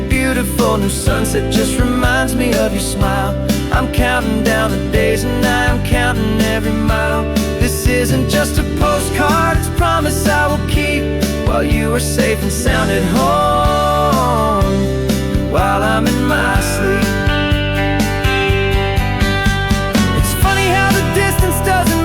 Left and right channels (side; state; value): both; identical; correlation 1.00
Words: new sunset just reminds me of your smile. I'm counting down the days and I'm counting every mile. This isn't just a postcard, it's a promise I will keep, while you are safe and sound at home, while I'm in my sleep. It's funny how the distance